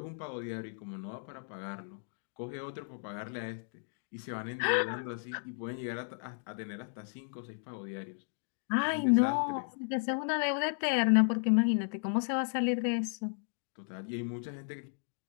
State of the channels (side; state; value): right; silent; digital silence